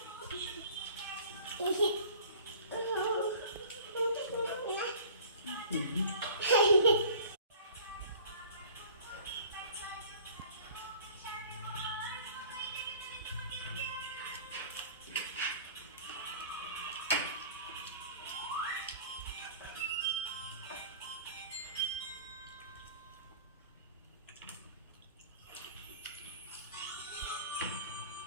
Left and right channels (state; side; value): inverted; both; correlation -0.46